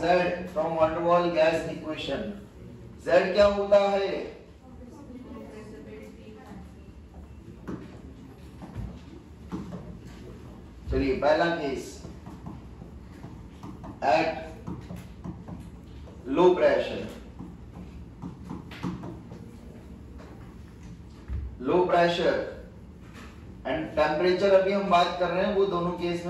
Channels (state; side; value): identical; both; correlation 1.00